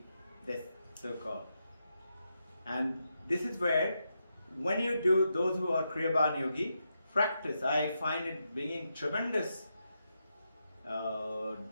so-called. And this is where, when you do, those who are Kriyaban Yogi, practice, I find it being tremendous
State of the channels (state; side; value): inverted; both; correlation -0.85